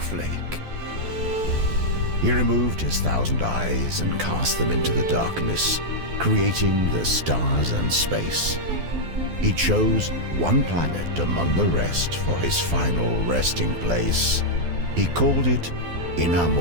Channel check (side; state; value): left; late; 12 ms